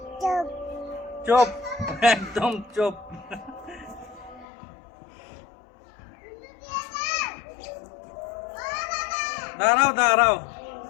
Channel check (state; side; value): drops out; right; at 4.5 s